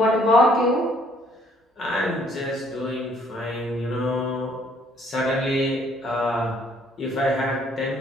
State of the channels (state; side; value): normal; both; correlation 0.63